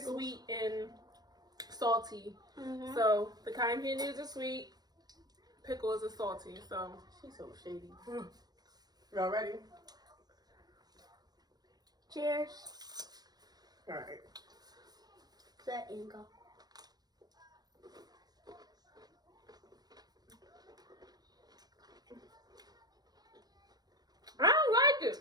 and salty. Mm-hmm. So the cotton candy is a sweet, pickle is a salty. So She's so shady. Y'all ready? Cheers. All right. Set and go. I don't like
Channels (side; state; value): left; late; 0.19 ms